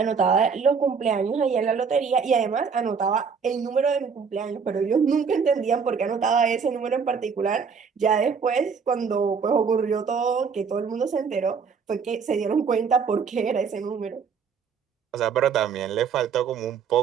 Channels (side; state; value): left; quieter; 6.0 dB